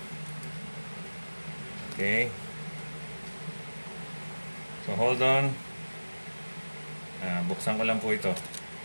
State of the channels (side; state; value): both; inverted; correlation -1.00